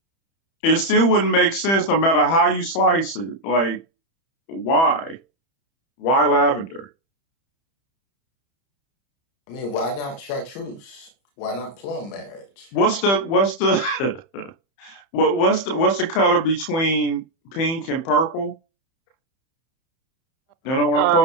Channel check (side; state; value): right; late; 30 ms